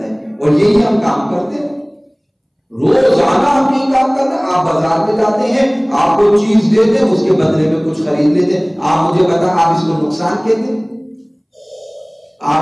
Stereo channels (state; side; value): identical; both; correlation 1.00